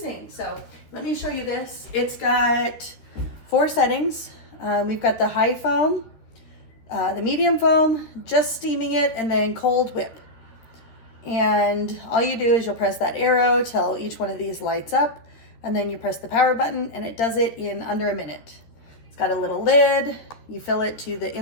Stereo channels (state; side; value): late; right; 13 ms